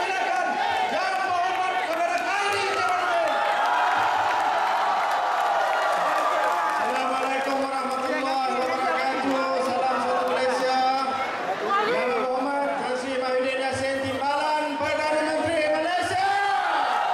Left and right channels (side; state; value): both; identical; correlation 1.00